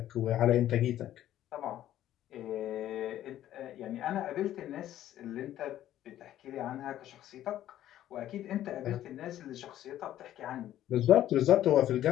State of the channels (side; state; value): right; quieter; 12.5 dB